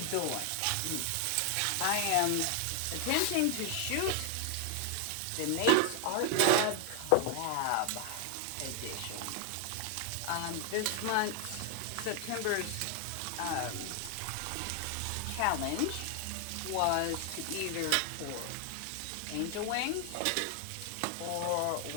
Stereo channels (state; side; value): different; both; correlation 0.00